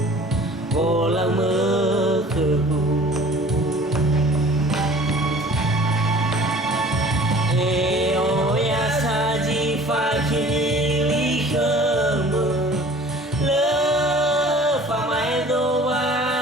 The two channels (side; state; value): both; normal; correlation 0.47